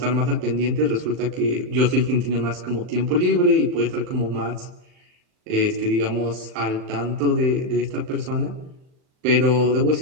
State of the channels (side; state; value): left; late; 39 ms